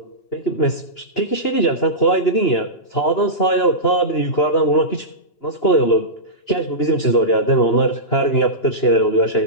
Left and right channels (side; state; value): right; late; 2.9 ms